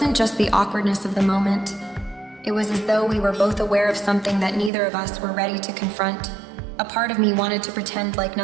just the awkwardness of the moment. It was as though we were both aware of something that neither of us were ready to confront. A part of me wanted to pretend like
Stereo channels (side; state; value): left; drops out; at 4.7 s